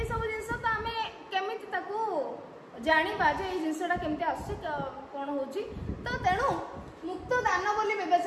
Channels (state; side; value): identical; both; correlation 1.00